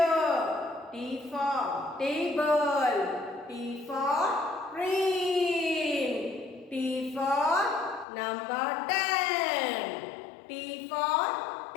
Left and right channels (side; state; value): right; drops out; at 8.1 s